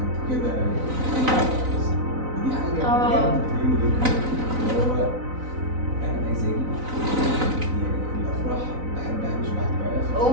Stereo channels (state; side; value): late; left; 3.9 ms